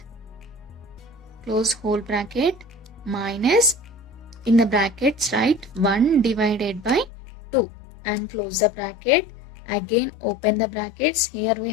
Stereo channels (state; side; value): drops out; right; at 7.1 s